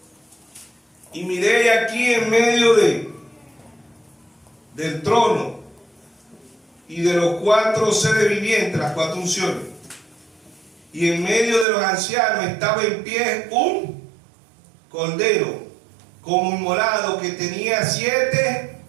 y miré aquí en medio del trono y de los 4 seres vivientes, las 4 unciones, y en medio de los ancianos estaba en pie un cordero como inmolado, que tenía 7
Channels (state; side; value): drops out; left; at 11.7 s